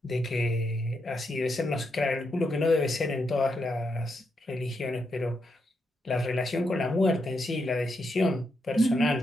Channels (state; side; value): normal; both; correlation 0.82